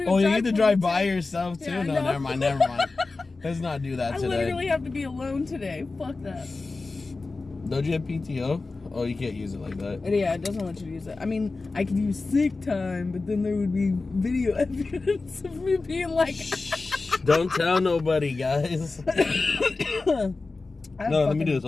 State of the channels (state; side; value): quieter; right; 3.7 dB